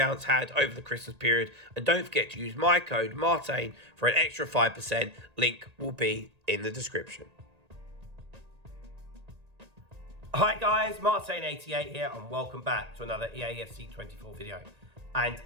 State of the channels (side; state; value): left; late; 1.8 ms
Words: had over the Christmas period. And don't forget to use my code Martain for an extra 5%. Link will be in the description. Hi guys, Martain88 here and welcome back to another EAFC 24 video. And